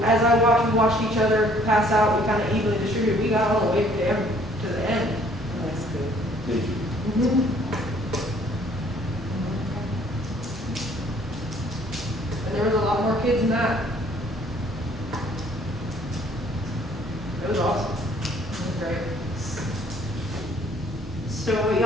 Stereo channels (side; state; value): both; normal; correlation 0.60